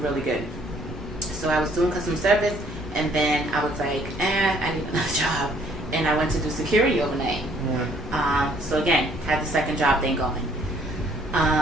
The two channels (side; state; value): both; normal; correlation 0.62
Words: really good. So I was doing customer service and then I was like, I need another job. And I went to do security overnight. So again, had the second job thing going.